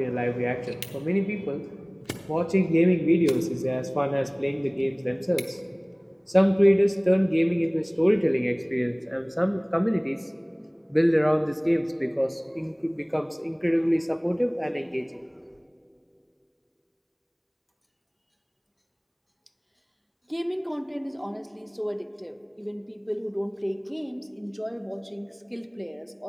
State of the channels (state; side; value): identical; both; correlation 1.00